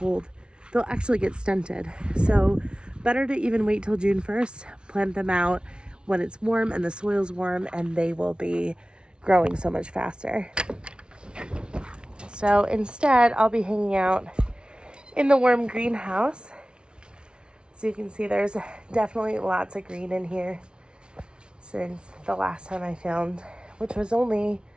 they'll actually get stunted. So better to even wait till June 1st, plant them out when it's warm and the soil's warm, and they will be growing so much faster. So instead, I'll be hanging out in the warm greenhouse. So you can see there's definitely lots of green in here since the last time I filmed, which was only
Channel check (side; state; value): left; late; 0.056 ms